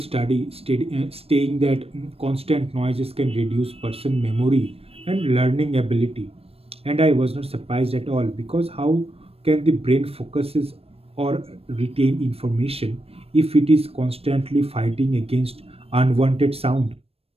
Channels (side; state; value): left; late; 0.28 ms